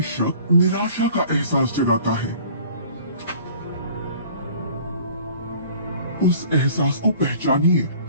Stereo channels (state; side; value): inverted; both; correlation -0.49